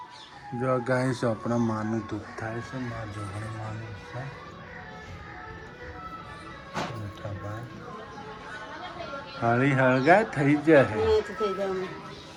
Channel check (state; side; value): identical; both; correlation 1.00